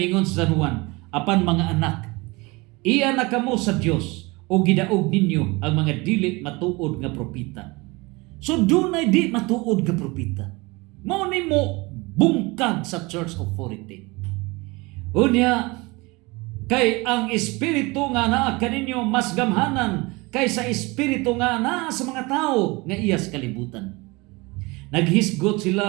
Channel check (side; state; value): left; quieter; 24.5 dB